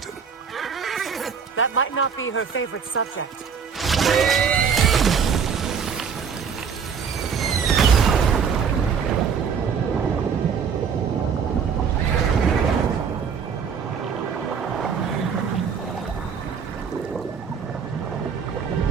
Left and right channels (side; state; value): left; quieter; 6.6 dB